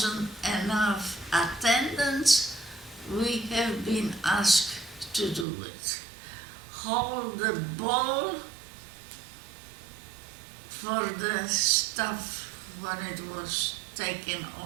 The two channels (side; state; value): left; drops out; at 5.5 s